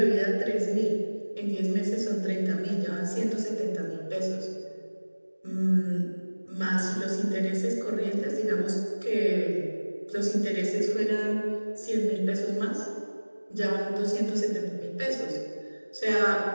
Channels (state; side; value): inverted; both; correlation -1.00